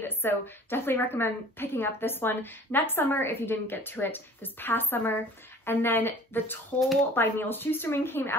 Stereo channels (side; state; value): both; normal; correlation 0.47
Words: So definitely recommend picking up this one next summer if you didn't get to it this past summer. And then The Toll by Neil Shusterman came